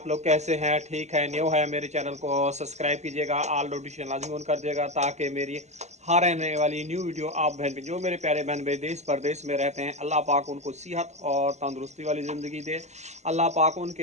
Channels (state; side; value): late; left; 0.33 ms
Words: लोग कैसे हैं? ठीक है? न्यू है मेरे चैनल को सब्सक्राइब कीजिएगा, ऑल नोटिफिकेशन लाजमी ऑन कर दिएगा ताकि मेरी हर आने वाली न्यू वीडियो आप बहन भी जो मेरे प्यारे बहन भाई देश परदेश में रहते हैं, अल्लाह पाक उनको सेहत और तंदुरुस्ती वाली ज़िंदगी दे। अल्लाह पाक